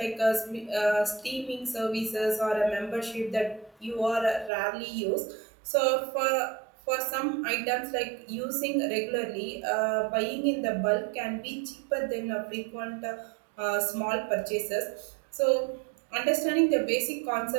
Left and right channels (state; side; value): drops out; left; at 4.5 s